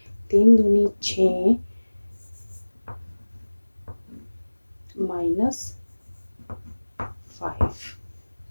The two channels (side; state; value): both; inverted; correlation -1.00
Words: 3 दूनी 6 -5।